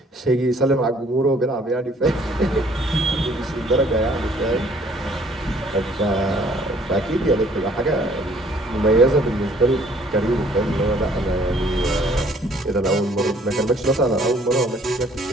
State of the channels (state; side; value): normal; both; correlation 0.59